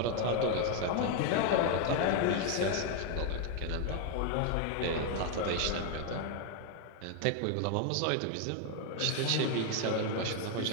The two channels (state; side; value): different; both; correlation 0.01